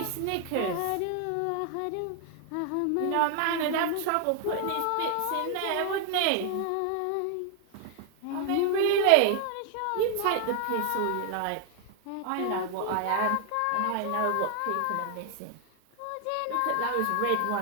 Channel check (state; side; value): different; both; correlation 0.00